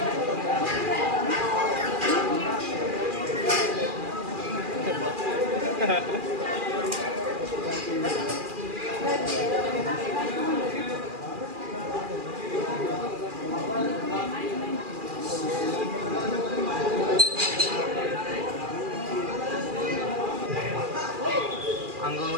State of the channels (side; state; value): left; late; 2.4 ms